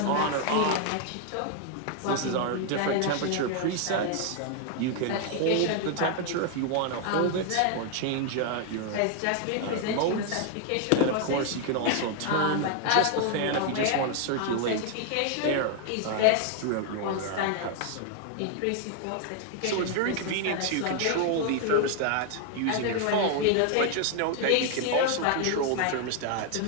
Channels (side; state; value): both; different; correlation 0.00